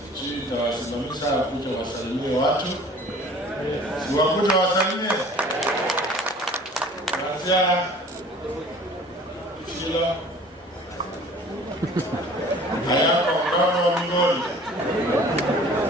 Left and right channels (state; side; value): normal; both; correlation 0.48